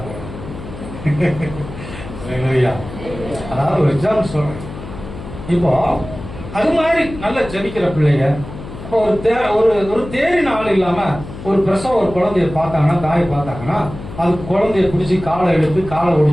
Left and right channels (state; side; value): noise; left; hum, 12 dB below the sound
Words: அதாவது ஒரு எக்ஸாம்பிள் சொல்றேன். இப்போ அது மாதிரி நல்ல ஜெபிக்கிற பிள்ளைங்க ஒரு தேரின் ஆள் இல்லாம ஒரு பிரசவ ஒரு குழந்தைய பார்த்தாங்கன்னா, தாயை பார்த்தாங்கன்னா, அது குழந்தைய பிடிச்சி காலை எடுத்து காலை